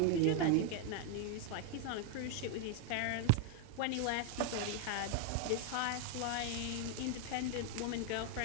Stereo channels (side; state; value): both; different; correlation 0.00